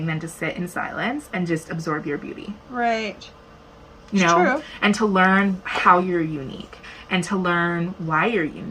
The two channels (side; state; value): both; identical; correlation 1.00